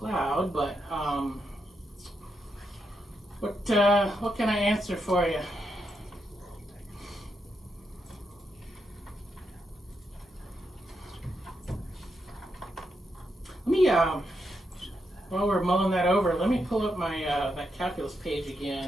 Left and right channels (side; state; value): both; normal; correlation 0.83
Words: But what can I answer for you? Let me, while we're mulling that over, let me pull up my that calculus page